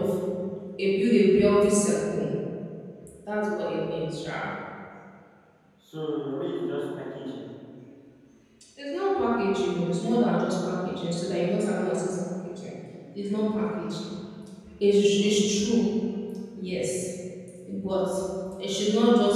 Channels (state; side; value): identical; both; correlation 1.00